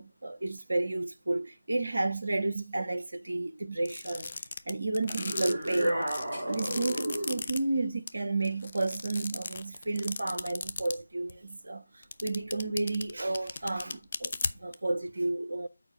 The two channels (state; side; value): inverted; both; correlation -0.94